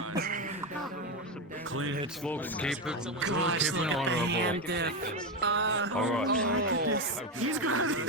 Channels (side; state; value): both; normal; correlation 0.13